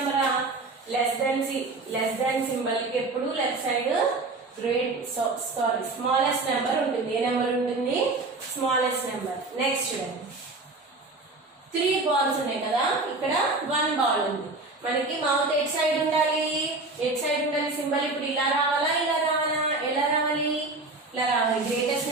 లెస్ దాన్ సింబల్ కి ఎప్పుడు లెఫ్ట్ సైడ్ స్మాలెస్ట్ నెంబర్ ఉంటుంది. ఏ నెంబర్ ఉంటుంది, స్మాలెస్ట్ నెంబర్. నెక్స్ట్ చూడండి, 3 balls ఉన్నాయి కదా, ఇక్కడ 1 ball ఉంది. మనకి మౌత్ ఎట్ సైడ్ ఉండాలి, సింబల్ ఇప్పుడు ఇలా రావాలా, ఇలా రావాలా, ఎలా రావాలి, ఇలా రావాలి. గ్రేటెస్ట్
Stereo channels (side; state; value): left; quieter; 3.3 dB